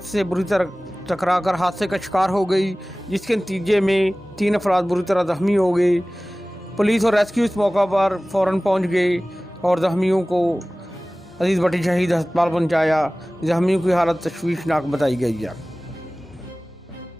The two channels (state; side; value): normal; both; correlation 0.98